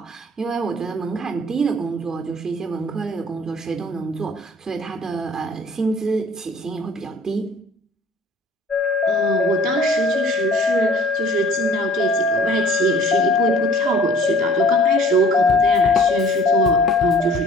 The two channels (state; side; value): normal; both; correlation 0.51